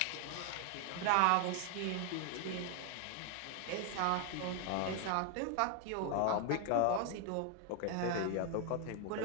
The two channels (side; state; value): both; different; correlation 0.00